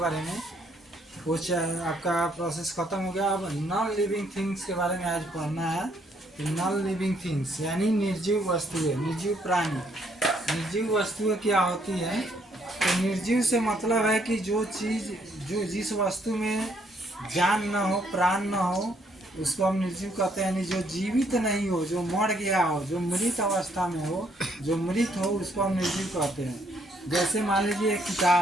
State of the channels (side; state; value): both; normal; correlation 0.69